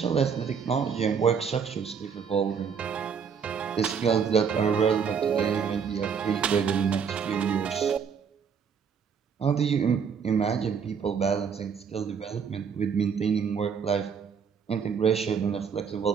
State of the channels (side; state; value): left; quieter; 6.7 dB